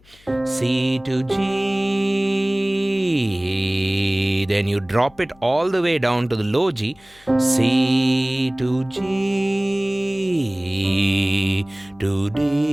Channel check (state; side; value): noise; left; hum, 28 dB below the sound